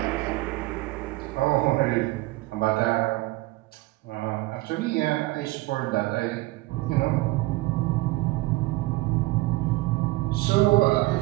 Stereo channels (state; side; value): quieter; left; 20.1 dB